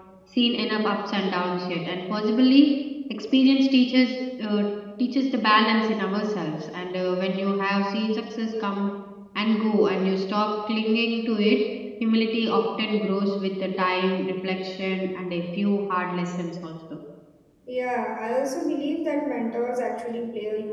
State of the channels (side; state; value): both; identical; correlation 1.00